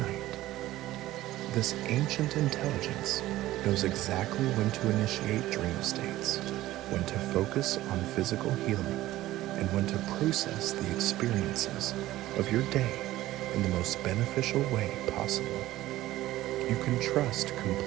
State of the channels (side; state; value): left; quieter; 15.7 dB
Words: This ancient intelligence knows exactly when to initiate dream states, when to focus on physical healing, and when to process the experiences of your day in the most beneficial way possible. You can trust